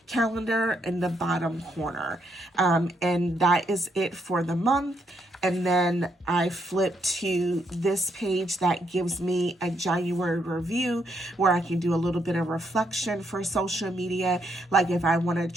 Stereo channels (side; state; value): both; normal; correlation 0.76